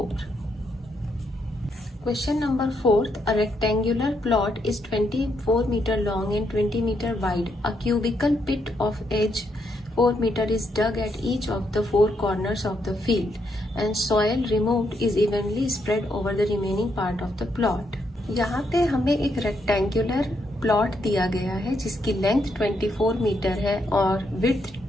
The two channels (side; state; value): both; normal; correlation 0.77